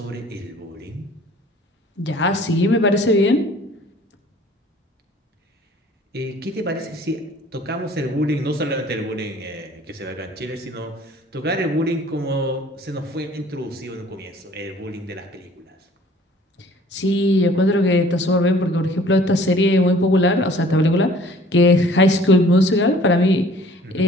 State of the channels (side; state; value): both; normal; correlation 0.53